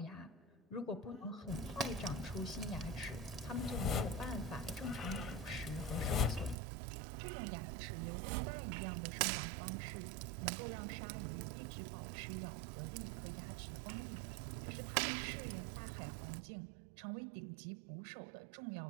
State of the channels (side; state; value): left; drops out; at 6.6 s